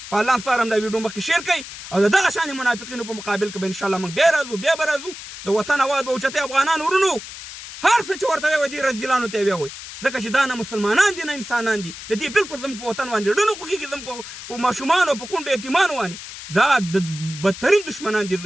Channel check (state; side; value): noise; left; hiss, 12 dB below the sound